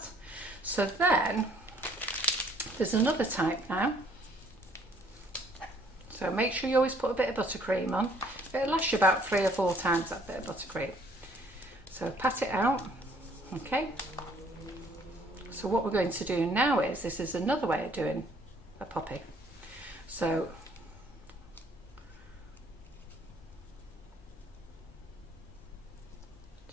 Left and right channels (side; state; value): both; normal; correlation 0.61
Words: So then, there's another type now. So make sure you always put a bit of buttercream on. It'll last you about 3 or 4 times, that bit of buttercream. So pat it out, okay. So what we're going to do now is, this is another way of doing a poppy. So you